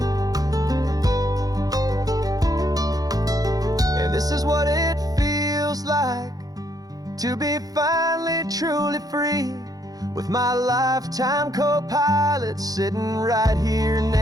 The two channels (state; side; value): late; left; 0.18 ms